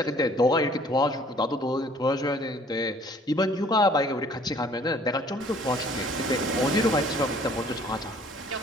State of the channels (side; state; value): both; normal; correlation 0.56